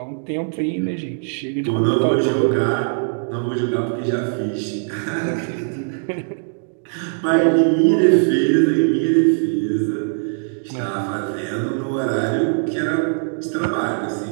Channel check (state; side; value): silent; left; digital silence